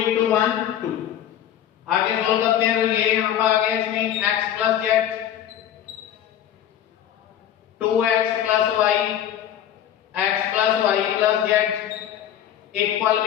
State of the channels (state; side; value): quieter; right; 10.5 dB